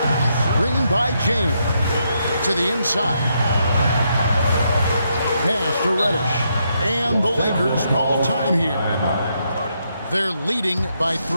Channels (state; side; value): inverted; both; correlation -0.78